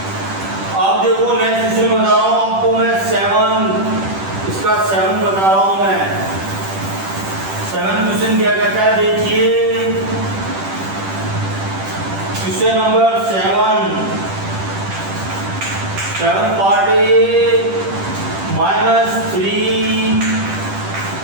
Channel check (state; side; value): late; left; 10 ms